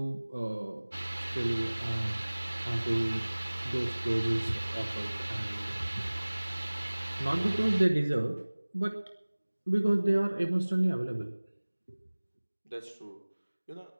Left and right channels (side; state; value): both; inverted; correlation -1.00